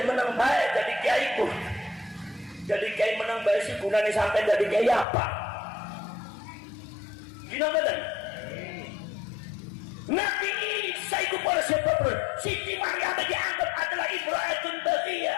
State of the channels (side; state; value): right; drops out; at 5.1 s